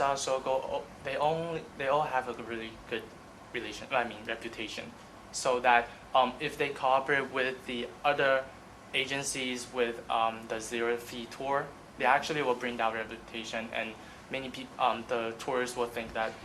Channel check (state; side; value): identical; both; correlation 1.00